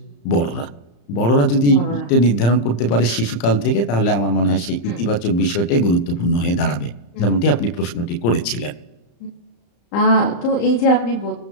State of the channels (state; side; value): late; right; 35 ms